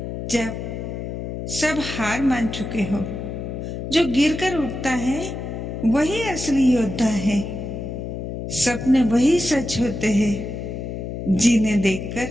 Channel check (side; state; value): left; noise; hum, 6 dB below the sound